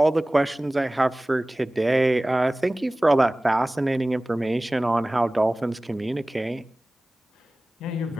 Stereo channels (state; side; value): normal; both; correlation 0.98